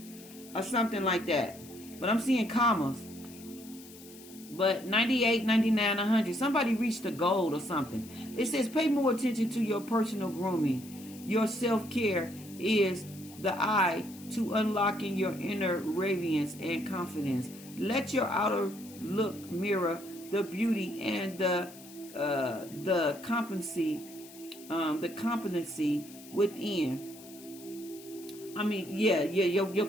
Or something like that. But I'm seeing commas. But 98, 99, 100. Somebody reached a goal or something. It says pay more attention to your personal grooming. Your self-care is the eye to unlocking your inner radiance and confidence. Let your outer look mirror the beauty and the competency within. I mean,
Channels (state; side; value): noise; left; hiss, 19 dB below the sound